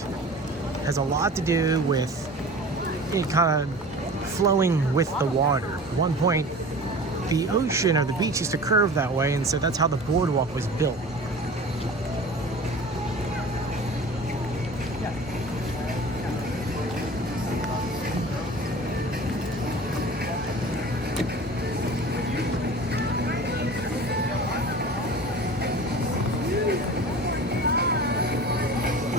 It has a lot to do with it kind of flowing with the water. At one point, the ocean or the beach used to curve that way, and so that's how the boardwalk was built.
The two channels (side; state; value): both; normal; correlation 0.39